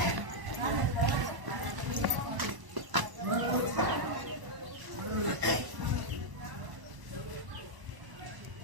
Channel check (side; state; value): left; late; 1.0 ms